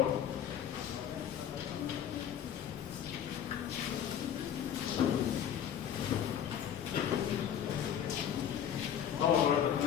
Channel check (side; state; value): right; quieter; 9.4 dB